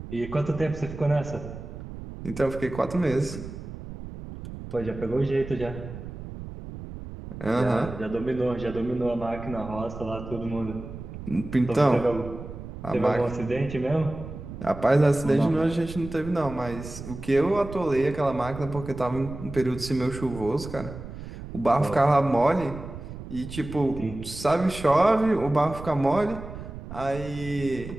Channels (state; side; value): noise; right; rumble, 11 dB below the sound